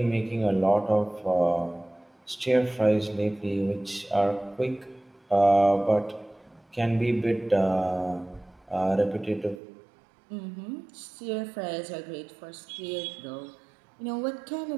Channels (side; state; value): left; drops out; at 9.6 s